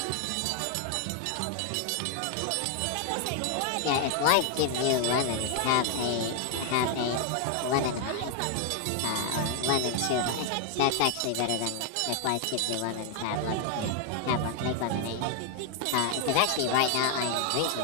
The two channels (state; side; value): different; both; correlation 0.00